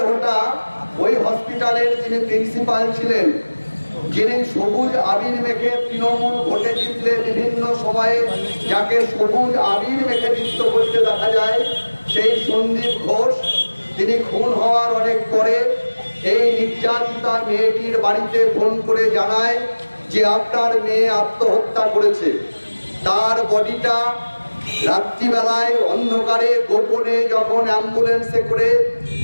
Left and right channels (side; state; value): both; inverted; correlation -1.00